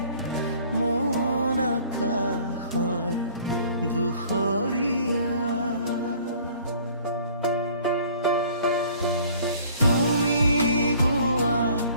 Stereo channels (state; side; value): inverted; both; correlation -0.53